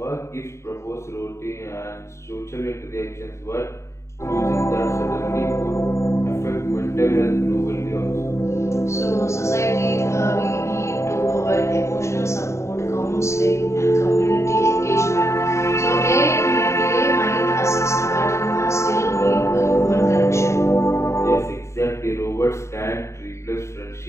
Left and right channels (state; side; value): late; right; 0.14 ms